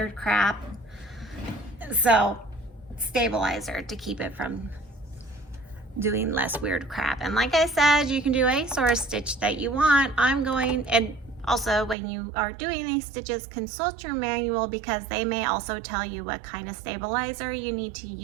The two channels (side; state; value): left; drops out; at 12.0 s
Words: crap. So stabilizer to keep it from doing less weird crap. And like I said, you can do any sort of stitch that you want. And also when you are doing these stitches, consult your manual because they may also tell you what kind of stabilizer you need to